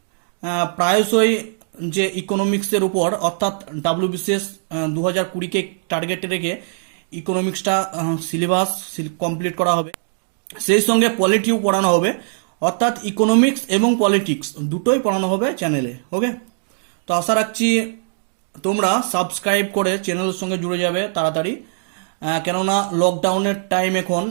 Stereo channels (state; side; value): silent; left; digital silence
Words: প্রায়শই যে ইকোনমিক্সের উপর, অর্থাৎ WBCS 2020কে টার্গেটে রেখে ইকোনমিক্সটা সিলেবাস কমপ্লিট করা হবে, সেই সঙ্গে পলিটিও পড়ানো হবে, অর্থাৎ ইকোনমিক্স এবং পলিটিক্স দুটোই পড়ানো হবে চ্যানেলে। ওকে, তো আশা রাখছি তোমরা সাবস্ক্রাইব করে চ্যানেলের সঙ্গে জুড়ে যাবে তাড়াতাড়ি, কেননা লকডাউনের টাইম, এখন